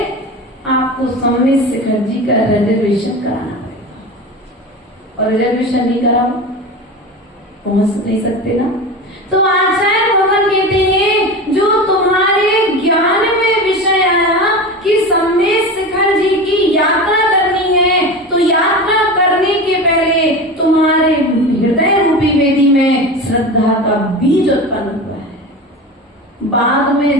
आपको सम्यक शिखरजी का रिजर्वेशन कराना पड़ेगा, और रिजर्वेशन नहीं करा पहुंच नहीं सकते ना। तो आचार्य भगवान कहते हैं जो तुम्हारे ज्ञान में बाद में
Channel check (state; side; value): normal; both; correlation 0.28